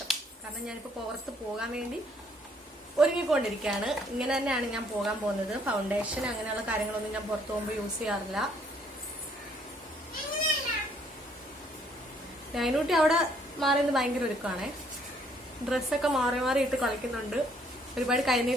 കാരണം ഞാനിപ്പോ പുറത്ത് പോകാൻ വേണ്ടി ഒരുങ്ങിക്കൊണ്ടിരിക്കുകയാണ്. ഇങ്ങനെ തന്നെയാണ് ഞാൻ പോകാൻ പോകുന്നത്. ഫൗണ്ടേഷൻ അങ്ങനെയുള്ള കാര്യങ്ങളൊന്നും ഞാൻ പുറത്ത് പോകുമ്പോൾ യൂസ് ചെയ്യാറില്ല. നൈനൂട്ടി അവിടെ മാറിയത് ഭയങ്കര ഒരുക്കമാണേ. ഡ്രസ്സൊക്കെ മാറി മാറി ഇട്ട് കളിക്കുന്നുണ്ട്. ഒരുപാട്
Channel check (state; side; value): normal; both; correlation 0.65